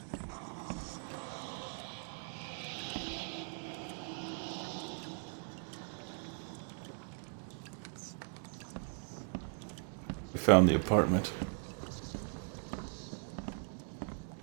We found the apartment.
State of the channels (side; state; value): left; silent; 52 dB below the other